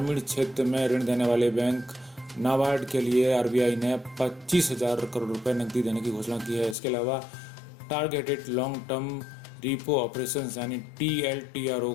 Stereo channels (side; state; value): right; drops out; at 6.8 s